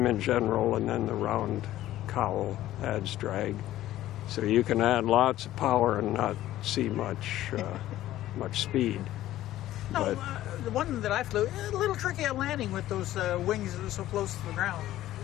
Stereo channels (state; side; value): quieter; right; 14.2 dB